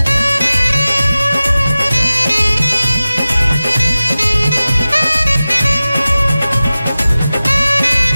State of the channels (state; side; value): inverted; both; correlation -0.96